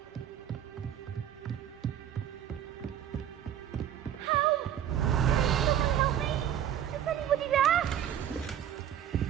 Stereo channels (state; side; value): quieter; left; 10.3 dB